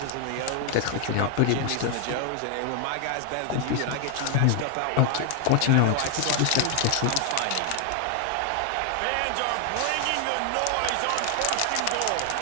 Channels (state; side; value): different; both; correlation 0.00